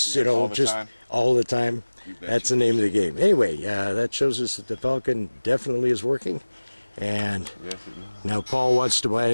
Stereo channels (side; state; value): both; inverted; correlation -1.00